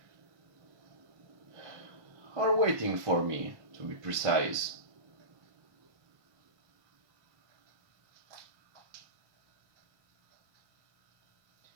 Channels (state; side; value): late; left; 1.5 ms